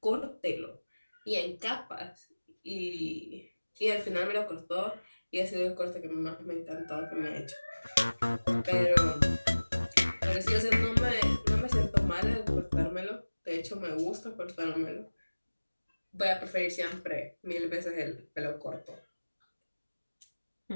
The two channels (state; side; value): inverted; both; correlation -1.00